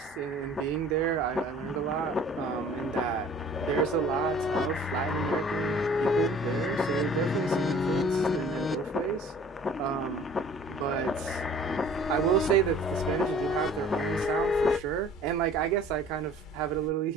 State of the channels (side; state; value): both; normal; correlation 0.50